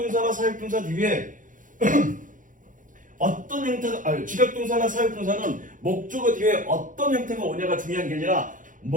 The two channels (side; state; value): left; late; 0.38 ms